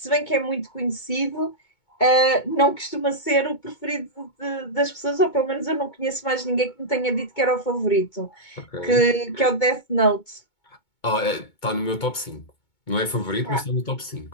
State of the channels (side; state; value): right; late; 2.2 ms